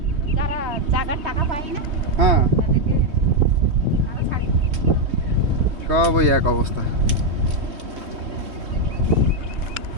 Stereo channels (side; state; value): left; late; 3.2 ms